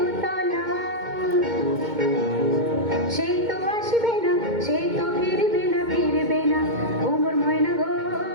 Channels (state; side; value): late; left; 2.2 ms